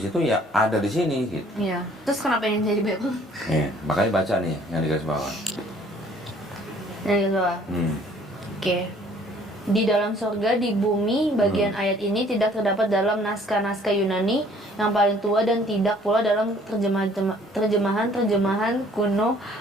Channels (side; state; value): both; normal; correlation 0.58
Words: situ ya ada di sini gitu. Iya. Terus kenapa yang jadi Bible? Makanya baca nih yang di garis bawah. Yang di bawah. Hmm. Oke. Di dalam surga, di bumi, bagian ayat ini tidak terdapat dalam naskah-naskah Yunani yang paling tua dan tidak pula dalam terjemahan kuno,